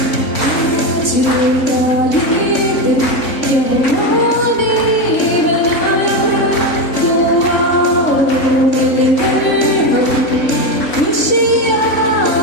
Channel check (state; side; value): late; right; 3.5 ms